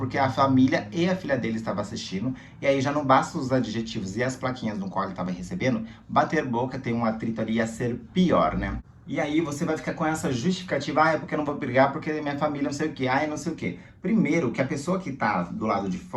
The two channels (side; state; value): both; identical; correlation 1.00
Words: a família e a filha dele estavam assistindo, e aí já não basta os adjetivos e as plaquinhas no qual ele estava recebendo, bater boca tem um atrito ali a ser pior, né? E aí você vai ficar com essa justificativa, é porque eu não vou brigar, porque minha família não sei o que, não sei o que. Primeiro, que a pessoa que tá do lado de